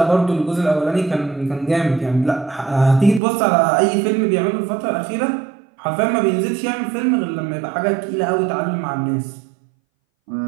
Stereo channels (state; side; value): drops out; left; at 3.2 s